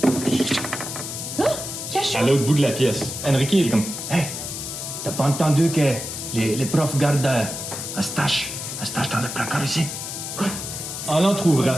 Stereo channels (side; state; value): left; noise; hiss, 6 dB below the sound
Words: Cachot! à l'autre bout de la pièce. Enrique, il est comme... Hey, t'as pas entendu que les profs gardent un stash dans le placard ici? En l'entr'ouvrant,